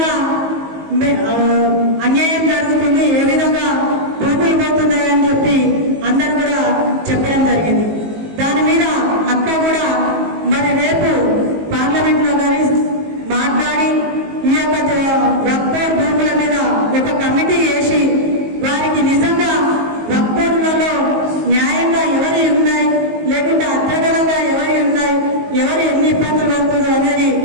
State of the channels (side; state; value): left; late; 19 ms